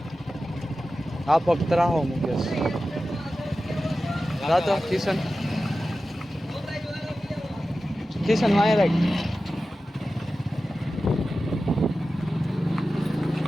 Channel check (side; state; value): both; normal; correlation 0.94